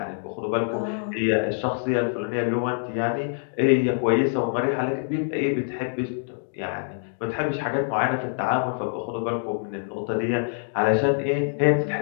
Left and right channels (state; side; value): silent; right; digital silence